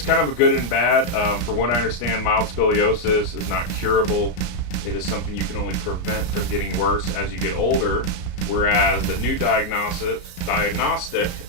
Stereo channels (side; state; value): right; late; 33 ms